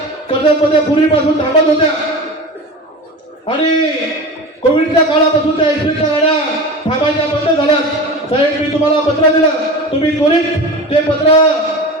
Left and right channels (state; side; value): normal; both; correlation 0.31